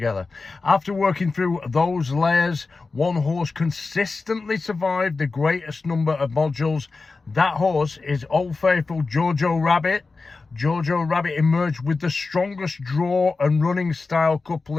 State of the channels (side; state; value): right; quieter; 4.0 dB